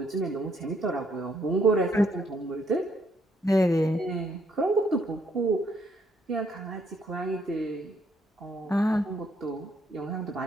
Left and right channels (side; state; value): both; normal; correlation 0.71